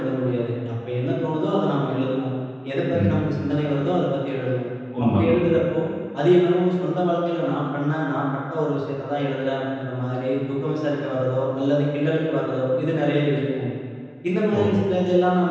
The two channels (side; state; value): both; identical; correlation 1.00